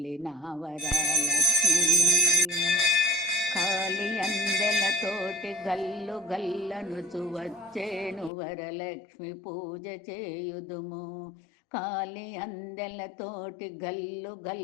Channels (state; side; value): drops out; right; at 8.3 s